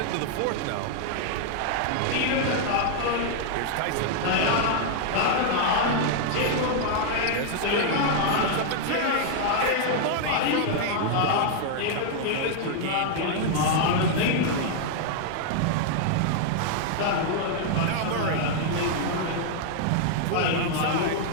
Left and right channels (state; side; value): different; both; correlation 0.00